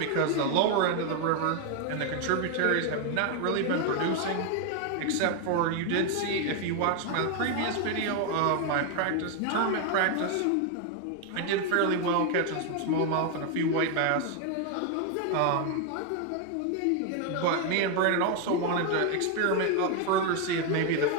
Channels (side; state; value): both; different; correlation 0.01